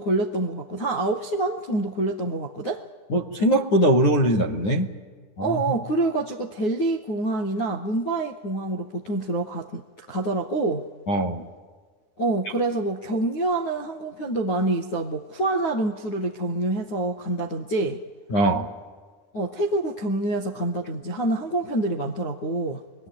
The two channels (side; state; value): right; late; 9.9 ms